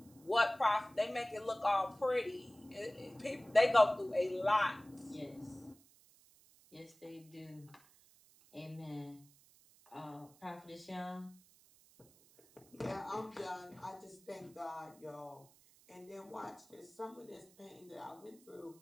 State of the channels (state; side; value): noise; right; hiss, 27 dB below the sound